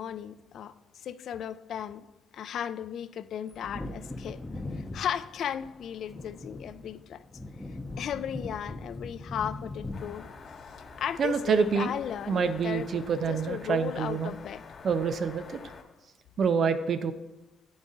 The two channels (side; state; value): both; normal; correlation 0.67